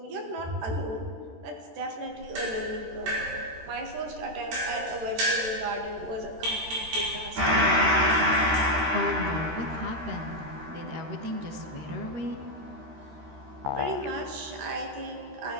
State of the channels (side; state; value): left; late; 13 ms